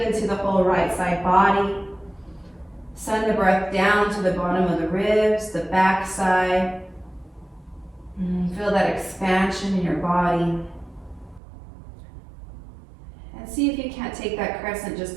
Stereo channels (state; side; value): drops out; left; at 11.4 s